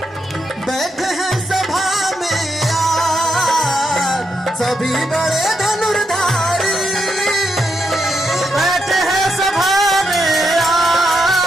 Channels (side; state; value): both; normal; correlation 0.82